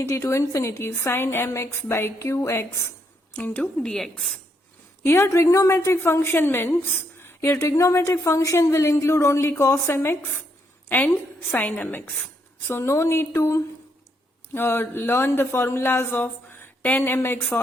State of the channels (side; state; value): both; normal; correlation 0.76